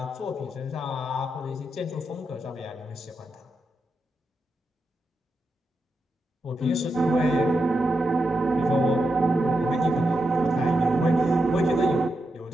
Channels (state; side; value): normal; both; correlation 0.86